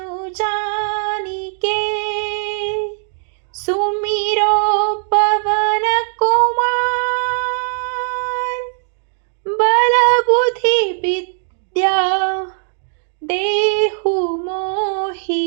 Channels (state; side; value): silent; left; 67 dB below the other